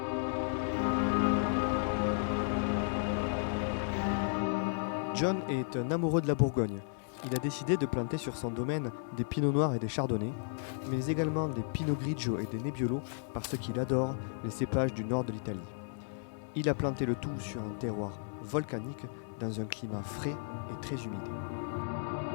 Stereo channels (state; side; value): silent; right; 55 dB below the other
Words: John est un amoureux de la Bourgogne. Il a décidé de planter sur son domaine des pinots noirs et des chardonnays, mais également des pinot grigio et des nebbiolo parce qu'il adore les cépages du nord de l'Italie. Il a planté le tout sur un terroir volcanique dans un climat frais et très humide.